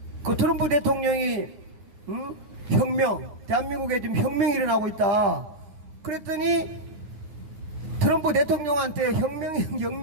트럼프 대통령이 혁명, 대한민국에 지금 혁명이 일어나고 있다. 그랬더니 트럼프 대통령한테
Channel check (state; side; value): late; left; 10 ms